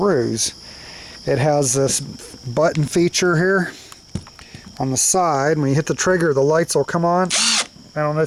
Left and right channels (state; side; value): identical; both; correlation 1.00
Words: It has this button feature here on the side. When you hit the trigger, the lights will come on. I don't know